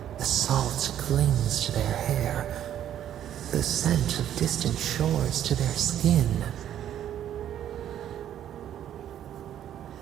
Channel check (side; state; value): left; quieter; 10.8 dB